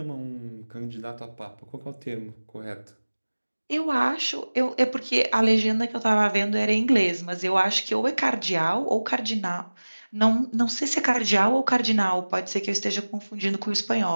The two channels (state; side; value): inverted; both; correlation -1.00